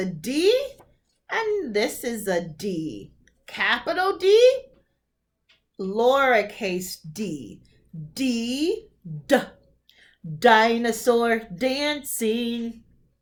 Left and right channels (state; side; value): identical; both; correlation 1.00